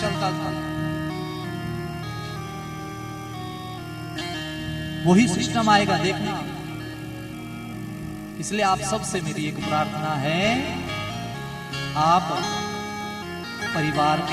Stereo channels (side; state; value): both; identical; correlation 1.00